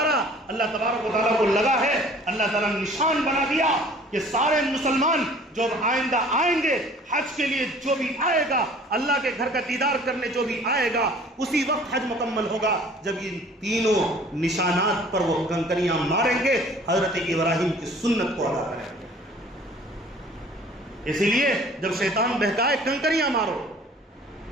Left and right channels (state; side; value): normal; both; correlation 0.51